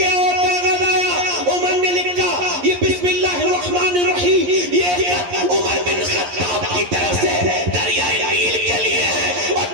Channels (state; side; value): late; left; 11 ms